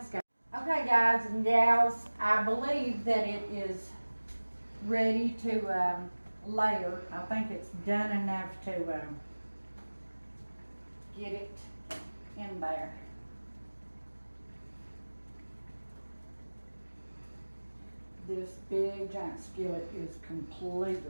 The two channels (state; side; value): inverted; both; correlation -1.00